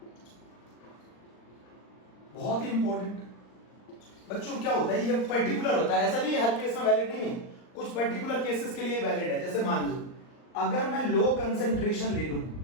बहुत ही इंपॉर्टेंट। बच्चों क्या होता है? ये पर्टिकुलर होता है, ऐसा नहीं है हर केस में वैलिड नहीं है, कुछ पर्टिकुलर केसेस के लिए वैलिड है। जैसे मान लो अगर मैं लो कंसंट्रेशन ले लूं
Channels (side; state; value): right; late; 39 ms